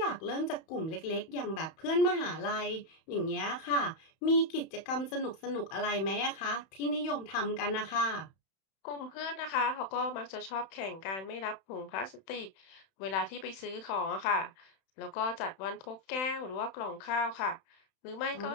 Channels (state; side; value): late; right; 31 ms